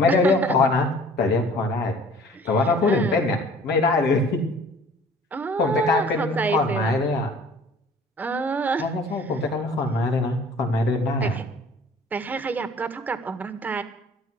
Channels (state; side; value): normal; both; correlation 0.50